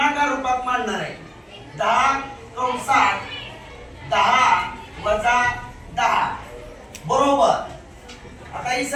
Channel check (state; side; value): identical; both; correlation 1.00